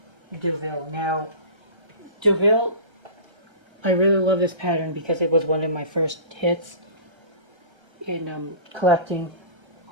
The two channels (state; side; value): late; left; 1.3 ms